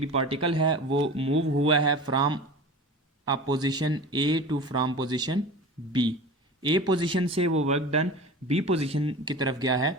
पार्टिकल है, वो मूव हुआ है from a position A to from position B. A position से वो वर्क डन बी पोजीशन की तरफ गया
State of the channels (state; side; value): normal; both; correlation 0.35